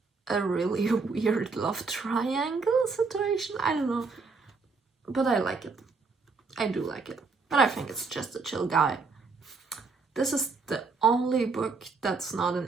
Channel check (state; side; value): quieter; left; 4.4 dB